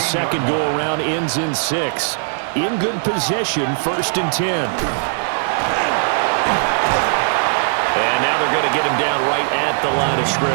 second go-around ends in 6. In good position, 1st and 10. And now they're going to get him down right at the line of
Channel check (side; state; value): left; silent; digital silence